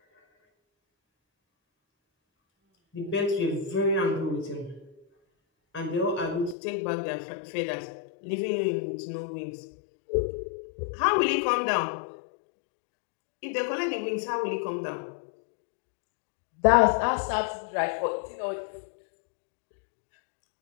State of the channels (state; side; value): drops out; right; at 6.6 s